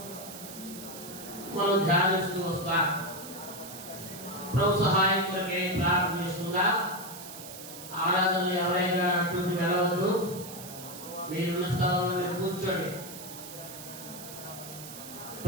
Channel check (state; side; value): noise; right; hiss, 13 dB below the sound